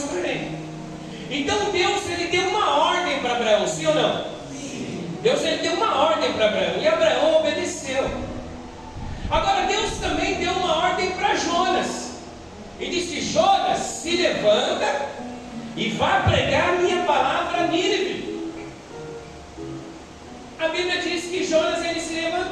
Então Deus ele deu uma ordem para Abraão, sim ou não? Sim. Deus ele deu uma ordem para Abraão e Abraão obedeceu. Jonas e disse: Jonas, se levanta e vá pregar a minha palavra a Nínive. A Bíblia diz que Jonas ele se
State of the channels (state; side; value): identical; both; correlation 1.00